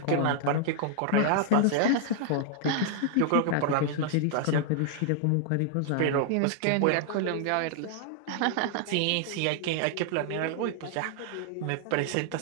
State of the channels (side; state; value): both; different; correlation -0.01